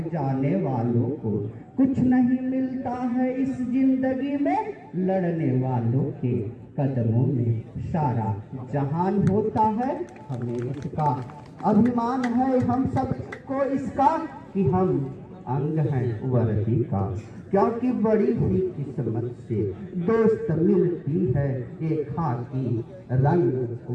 जाने वालों को कुछ नहीं मिलता है इस जिंदगी में, लड़ने वालों के कदमों में सारा जहान होता है। हमें इसका अभिमान है हम सबको इसका कि हम अंग हैं वर्दी का, क्योंकि बड़ी ही किस्मत से दोस्त मिलती है एक खाकी रंग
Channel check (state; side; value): identical; both; correlation 1.00